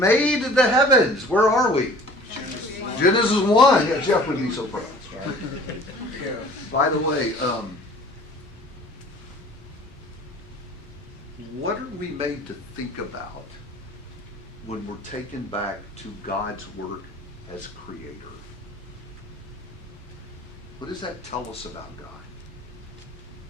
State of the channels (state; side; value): normal; both; correlation 0.48